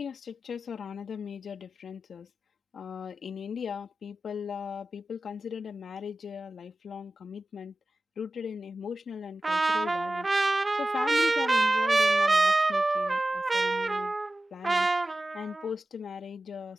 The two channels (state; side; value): normal; both; correlation 0.95